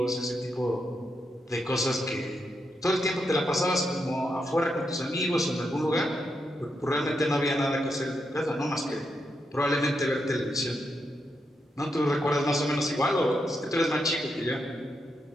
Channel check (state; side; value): normal; both; correlation 0.83